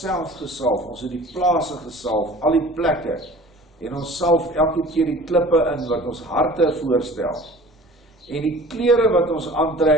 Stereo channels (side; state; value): both; normal; correlation 0.45